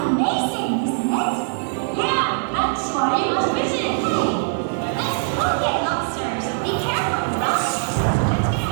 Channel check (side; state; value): left; silent; 56 dB below the other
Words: isn't it? Yeah, that's why you must visit. Hey, let's go get lobsters. Be careful, Rob. Let's get